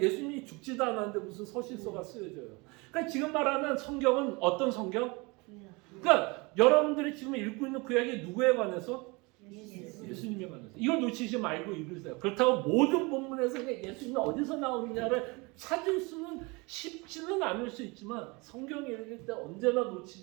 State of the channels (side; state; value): left; quieter; 26.7 dB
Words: 죽지도 않았는데 무슨 서신서가 쓰여져요. 그러니까 지금 말하는 성경은 어떤 성경? 그러니까 여러분들이 지금 읽고 있는 구약이 누구에 관해서? 예수님에 관해서. 이걸 놓치지 말고 읽으세요. 그렇다고 모든 본문에서 예수님이 어디서 나오느냐를 찾을 수는 쉽지는 않을 수 있지만 성경을 읽을 때 언제나